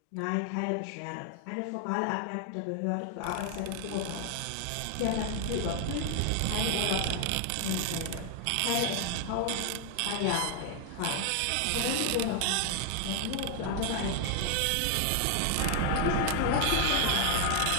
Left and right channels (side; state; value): both; different; correlation 0.00